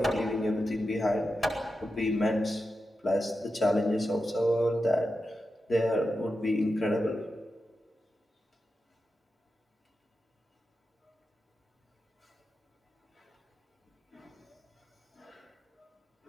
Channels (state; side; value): normal; both; correlation 0.90